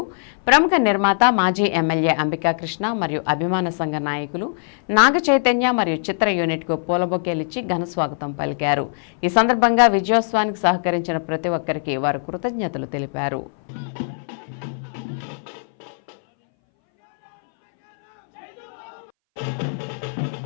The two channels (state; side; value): silent; right; 62 dB below the other